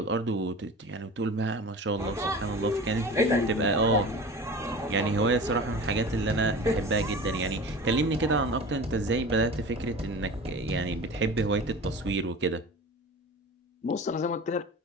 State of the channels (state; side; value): normal; both; correlation 0.36